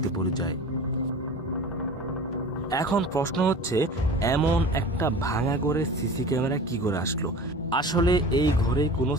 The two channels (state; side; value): normal; both; correlation 0.38